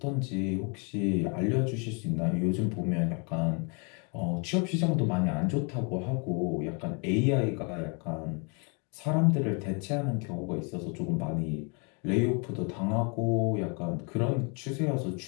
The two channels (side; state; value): right; quieter; 35.4 dB